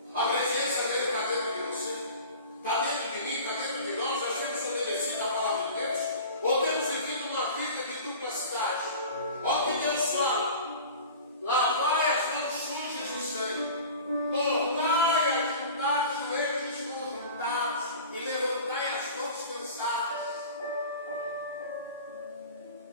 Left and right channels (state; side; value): inverted; both; correlation -0.39